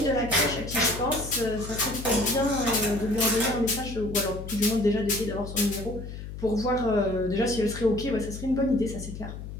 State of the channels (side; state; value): left; noise; hum, 10 dB below the sound